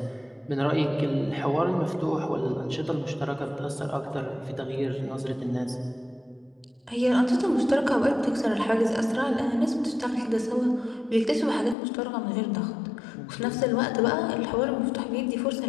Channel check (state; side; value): drops out; right; at 11.8 s